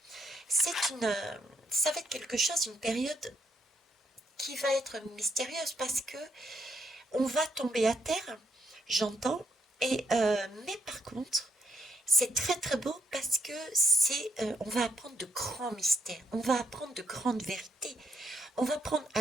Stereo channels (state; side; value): normal; both; correlation 0.75